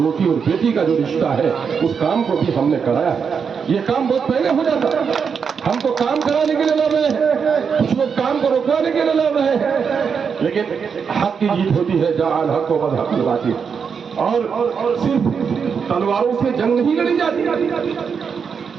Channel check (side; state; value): left; quieter; 6.3 dB